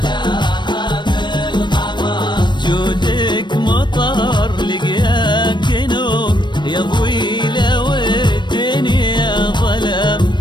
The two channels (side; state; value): right; late; 0.22 ms